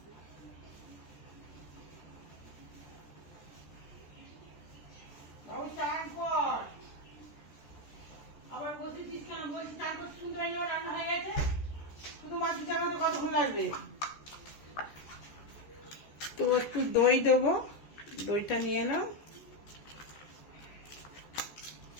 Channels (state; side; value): late; right; 14 ms